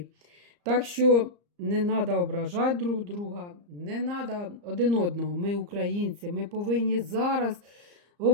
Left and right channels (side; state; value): left; late; 34 ms